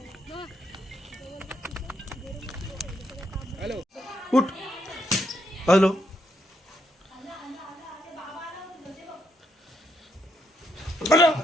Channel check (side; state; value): both; normal; correlation 0.77